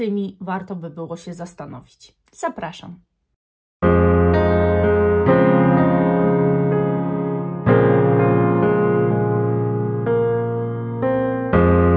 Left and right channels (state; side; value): identical; both; correlation 1.00